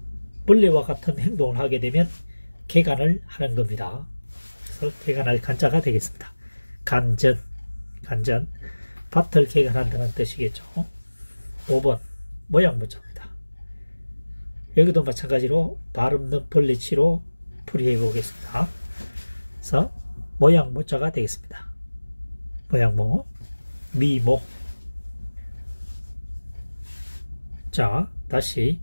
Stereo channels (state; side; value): inverted; both; correlation -1.00